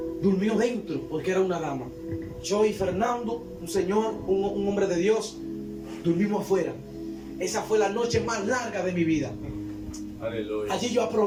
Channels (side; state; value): both; identical; correlation 1.00